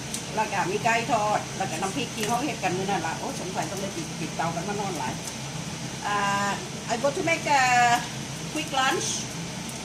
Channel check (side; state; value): both; identical; correlation 1.00